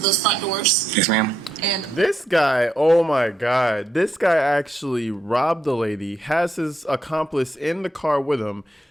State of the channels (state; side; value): normal; both; correlation 0.80